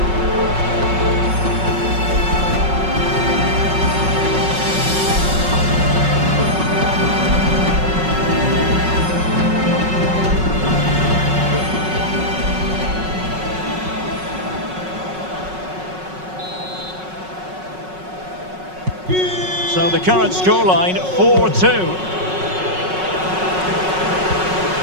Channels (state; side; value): late; left; 5.4 ms